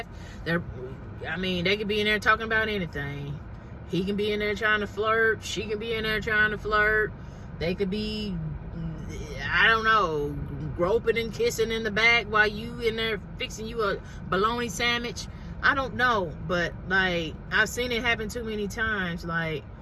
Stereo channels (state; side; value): identical; both; correlation 1.00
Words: they could be in there talking about anything. He can be in there trying to flirt. She can be in there trying to flirt. They could be, I don't know, groping and kissing in the back while you in there fixing you a bologna sandwich. I don't know, but like, I've seen it happen too many times. Like,